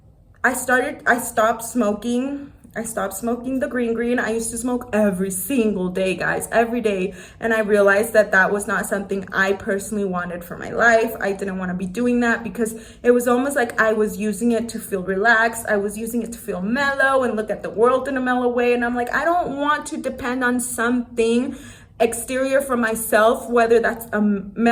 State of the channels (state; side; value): identical; both; correlation 1.00